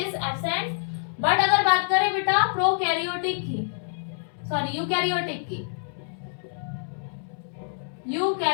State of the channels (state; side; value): silent; right; 61 dB below the other